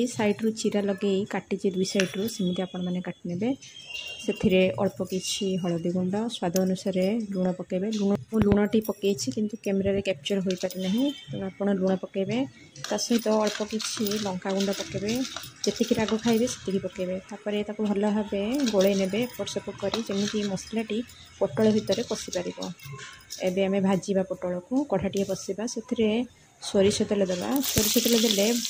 साइड्रु चीरा लगे काटी दुई सैड्रु सेमती आपण मैंने काटि ने से अल्प किसी हलदी गुंड स्वाद अनुसार लुण पकेबे। लुणटी पकई किंतु कैमेरा कैप्चर हो पारि ना तेणु आप लुण पकेबे ता सहित अल्प किसी लंका गुंड पकेबे जी राग खाइबे से पकेबे। तापर ताको भल भाव गोले नेबे एपट सेपट करी जमी मसलाटी पटल भितर पशि पार। एबे आमे भाजीबा पटल को कढ़ाटी बसवा से सोरिष तेल देवा। सोरिष तेल देले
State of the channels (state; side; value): identical; both; correlation 1.00